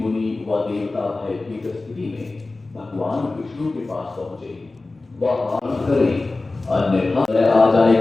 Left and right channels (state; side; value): quieter; right; 3.3 dB